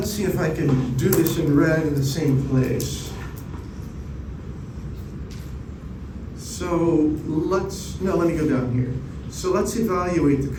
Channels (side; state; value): both; identical; correlation 1.00